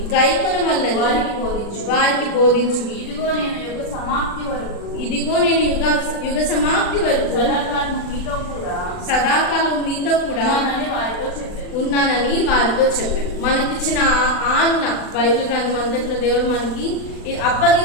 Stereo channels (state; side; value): late; right; 39 ms